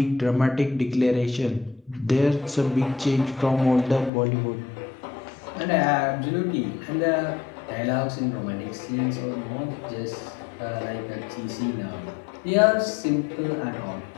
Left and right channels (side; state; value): right; drops out; at 4.1 s